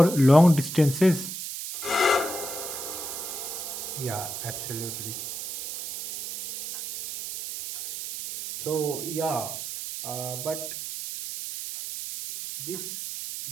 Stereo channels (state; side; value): noise; right; hiss, 7 dB below the sound